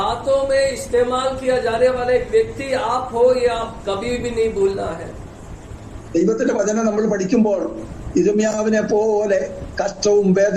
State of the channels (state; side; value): identical; both; correlation 1.00